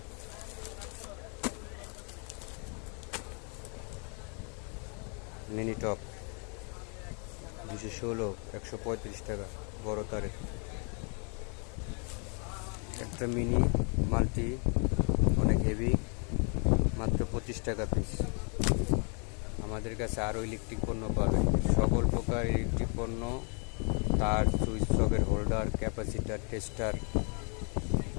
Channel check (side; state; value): right; quieter; 38.0 dB